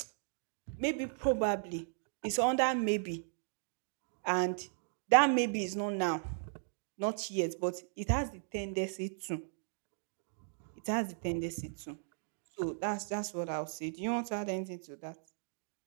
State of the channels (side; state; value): left; silent; digital silence